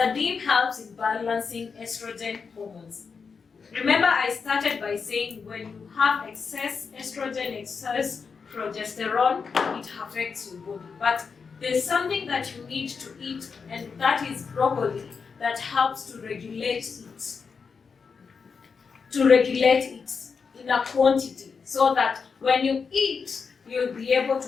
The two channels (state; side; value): quieter; right; 5.5 dB